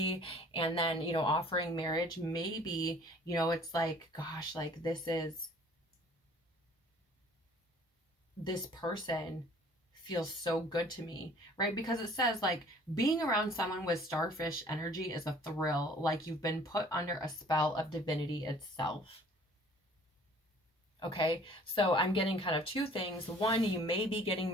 and then, you know, offering marriage, maybe, you know, it's like, gosh, like, this person feels so good to me, right? Because it says, like, being around someone with starfish energy is a thrill, like you've been put under a spell of divinity itself. Okay, so I'm getting kind of two things. One, you may be getting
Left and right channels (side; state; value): both; normal; correlation 0.53